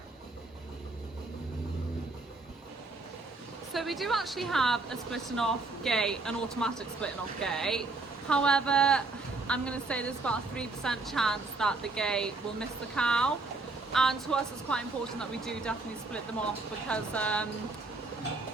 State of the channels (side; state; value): left; quieter; 3.5 dB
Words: So we do actually have a splitting off gate, an automatic splitting off gate. However, I'm going to say there's about a 3% chance that the gate will miss the cow. And to us it's quite important that we do definitely split them off, because